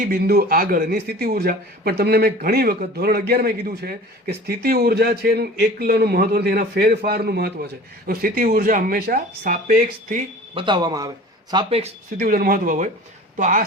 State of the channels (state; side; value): normal; both; correlation 0.42